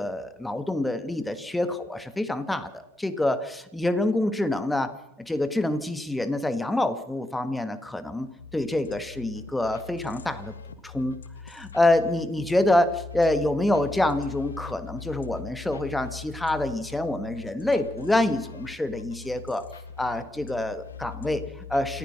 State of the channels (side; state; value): both; normal; correlation 0.84